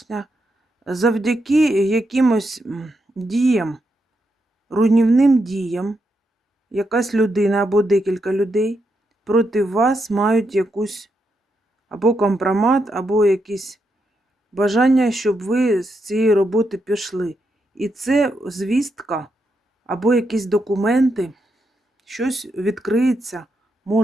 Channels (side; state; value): both; normal; correlation 0.82